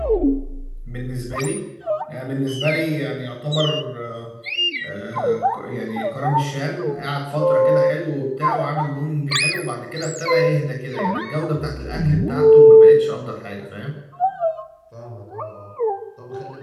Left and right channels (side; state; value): both; identical; correlation 1.00